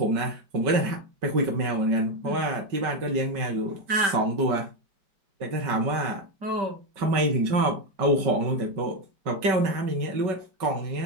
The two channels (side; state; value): left; late; 5.3 ms